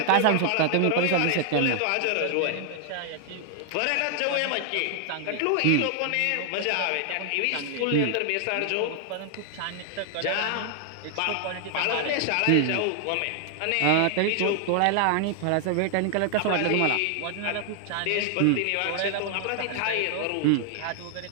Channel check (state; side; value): different; both; correlation 0.00